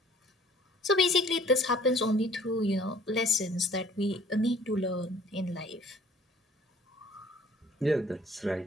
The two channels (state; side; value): normal; both; correlation 0.54